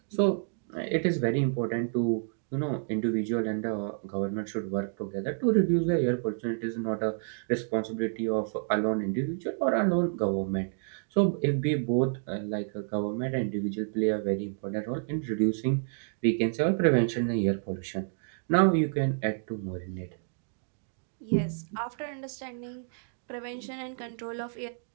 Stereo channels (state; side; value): silent; left; digital silence